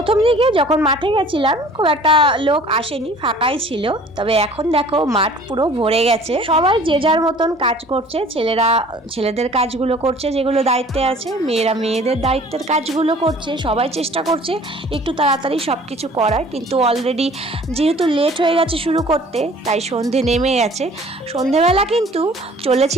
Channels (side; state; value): both; normal; correlation 0.50